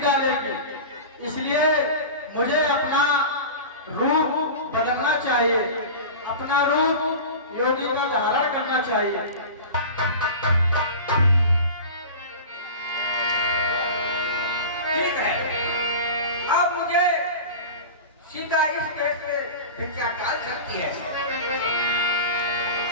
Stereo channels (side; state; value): both; inverted; correlation -0.32